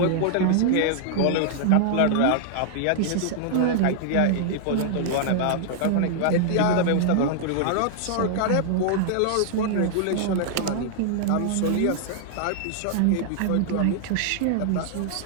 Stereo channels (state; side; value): different; both; correlation -0.01